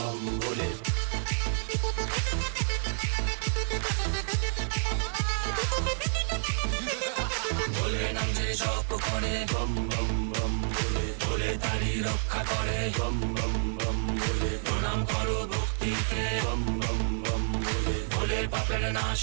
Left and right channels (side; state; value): left; silent; 58 dB below the other